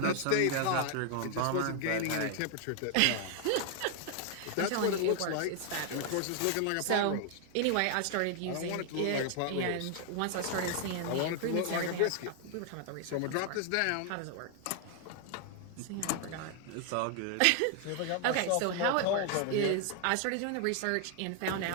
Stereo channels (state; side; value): different; both; correlation 0.00